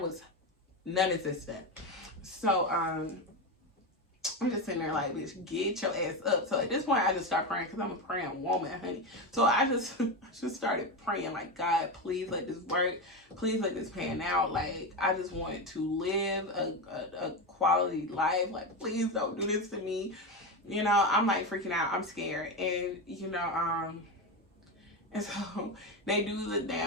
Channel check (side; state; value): both; normal; correlation 0.16